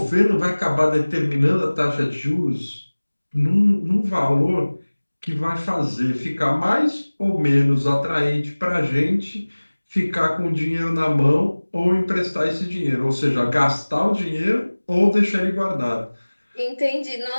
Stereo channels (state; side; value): inverted; both; correlation -1.00